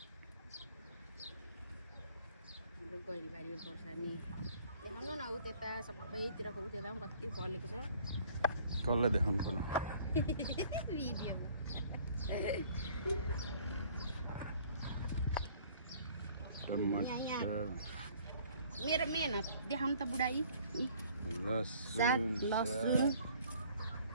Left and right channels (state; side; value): inverted; both; correlation -0.56